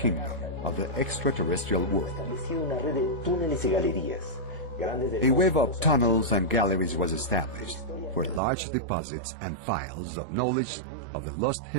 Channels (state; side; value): drops out; left; at 8.4 s